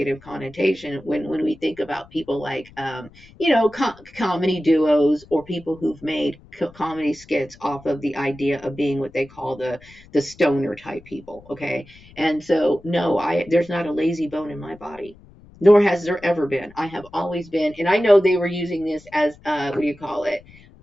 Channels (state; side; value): noise; left; rumble, 24 dB below the sound